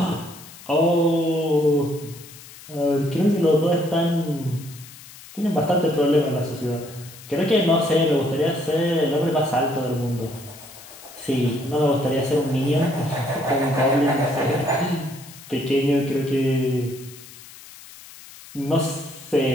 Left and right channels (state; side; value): noise; left; hiss, 18 dB below the sound